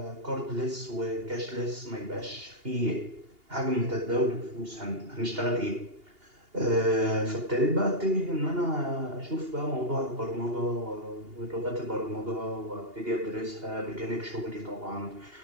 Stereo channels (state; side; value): late; left; 2.8 ms